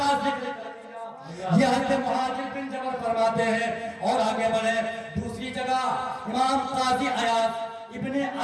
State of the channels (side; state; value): both; identical; correlation 1.00